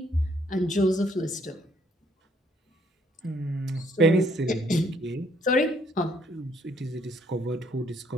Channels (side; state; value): both; normal; correlation 0.67